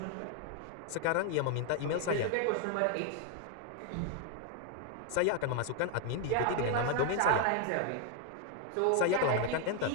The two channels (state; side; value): different; both; correlation 0.00